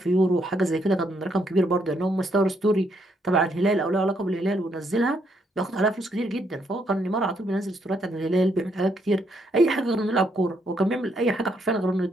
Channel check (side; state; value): both; normal; correlation 0.74